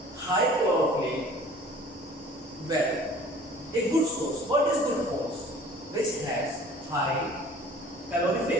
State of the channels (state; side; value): normal; both; correlation 0.48